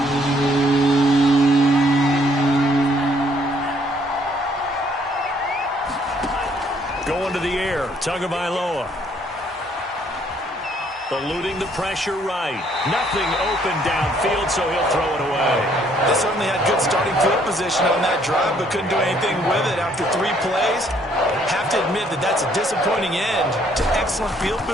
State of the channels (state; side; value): normal; both; correlation 0.65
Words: Going to the air, Tagovailoa. Eluding the pressure right. Nothing open downfield, so he'll throw it away. They certainly had good starting field position on that drive, but couldn't do anything with it after 3 plays. Have to admit that that's a disappointing end to excellent field